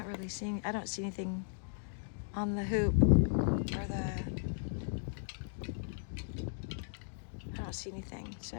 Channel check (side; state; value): right; silent; digital silence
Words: really seeing, I don't see anything on the hoop or I don't see anything. So